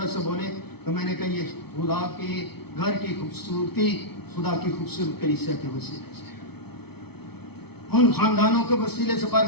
سا بولے، تو میں نے کہا یہ خدا کے گھر کی خوبصورتی خدا کی خوبصورت کلیسیا کے وسیلے سے، ان خاندانوں کے وسیلے سے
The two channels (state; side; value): late; right; 0.97 ms